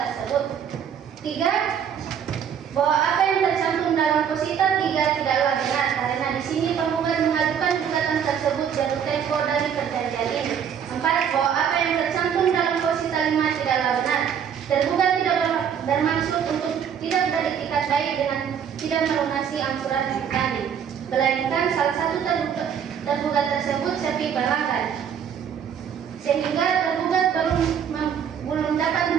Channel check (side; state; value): left; quieter; 8.1 dB